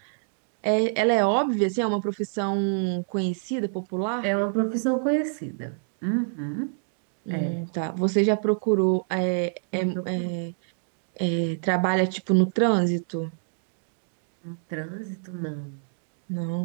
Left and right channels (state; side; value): silent; left; digital silence